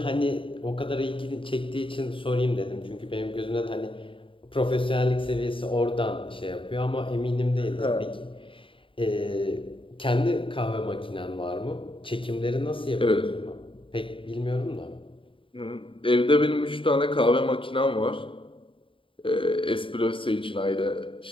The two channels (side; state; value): right; late; 0.25 ms